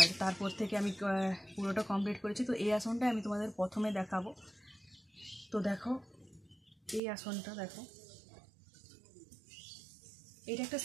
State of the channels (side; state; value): left; drops out; at 7.0 s